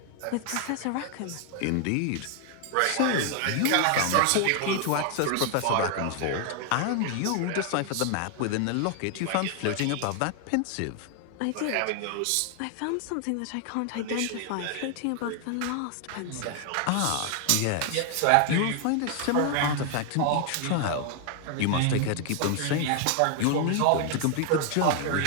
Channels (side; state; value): both; different; correlation 0.00